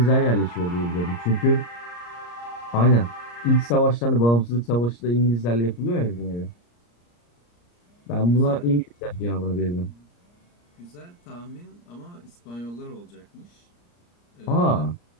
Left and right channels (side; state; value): right; late; 34 ms